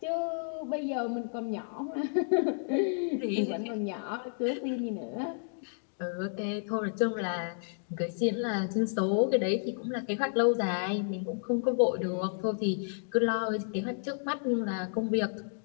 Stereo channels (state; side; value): silent; right; digital silence